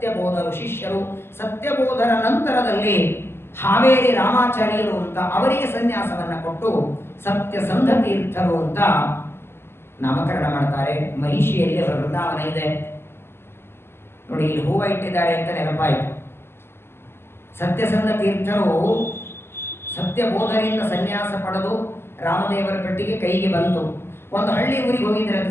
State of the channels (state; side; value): late; right; 0.12 ms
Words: ಶಿಷ್ಯರು. ಸತ್ಯಬೋಧರ ನಂತರದಲ್ಲಿ ಹಾವೇರಿ ರಾಮಾಚಾರ್ಯರು ಅಂತ ಅವರಿಗೆ ಸನ್ಯಾಸವನ್ನ ಕೊಟ್ಟು ಸತ್ಯಸಂಧ ತೀರ್ಥರು ಅಂತ ನಾಮಕರಣ ಮಾಡ್ತಾರೆ. ಮಹಿಷಿಯಲ್ಲಿ ಅವರ ವೃಂದಾವನ ಇದೆ ನೋಡಿ. ಇಲ್ಲಿ ಹೂವ ಇಟ್ಟಿದ್ದಾರೆ ಅಂತ ನೆನಪಾಯಿತು. ಸತ್ಯಸಂಧ ತೀರ್ಥರು ಸತ್ಯಬೋಧರಿಂದ ಸನ್ಯಾಸ ಪಡೆದು ರಾಮದೇವರ ಪೆಟ್ಟಿಗೆ ಕೈಗೆ ಬಂತು. ಒಂದು ಹಳ್ಳಿ ಊರಿಗೆ ಹೋಗಿದ್ದಾರೆ